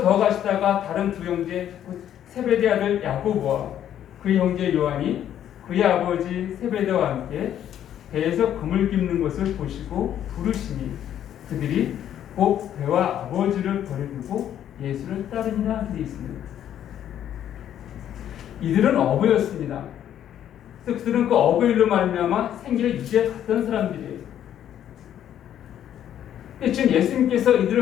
더 가시다가 다른 두 형제 곧 세베대 아들 야고보와 그 형제 요한이 그의 아버지 세베대와 함께 배에서 그물 깁는 것을 보시고 부르시니 그들이 곧 배와 아버지를 버려두고 예수를 따르니라 되어 있습니다. 이들은 어부였습니다. 그래서 그들은 그 어부 일로 말미암아 생계를 유지해 갔던 사람들이에요. 지금 예수님께서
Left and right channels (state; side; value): quieter; right; 10.6 dB